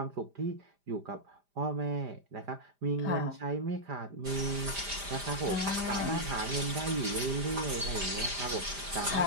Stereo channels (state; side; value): late; left; 5.0 ms